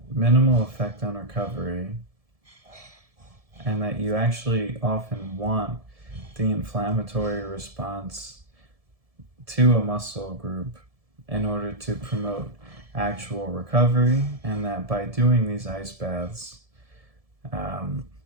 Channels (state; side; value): late; left; 1.7 ms